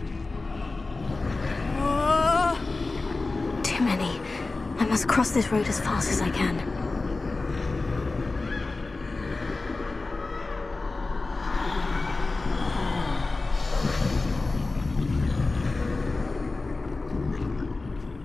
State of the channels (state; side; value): quieter; right; 3.5 dB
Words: Too many. I must cross this road as fast as I can.